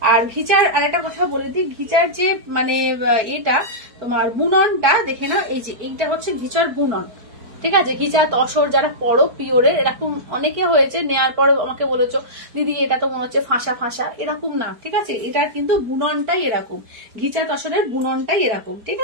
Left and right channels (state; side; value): late; left; 4.5 ms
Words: আর ঘিচার আর একটা কথা বলে দিই, ঘিচার যে মানে এটা তোমার বুননটা দেখে নাও, এই যে এইটা হচ্ছে ঘিচার বুনন, ঠিক আছে, ঘিচা তসর যারা পরো পিওরে, এরকম অনেকে হয়েছে নেওয়ার পরে আমাকে বলেছো দিদি এটা তো মনে হচ্ছে ফাঁসা ফাঁসা, এরকম না, ঠিক আছে, এটার কিন্তু বুননটাই এরকম, ঘিচা তসরের বুননটাই এরকম, ঠিক